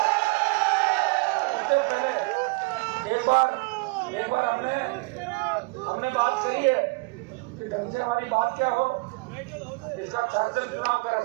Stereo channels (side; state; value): left; quieter; 27.6 dB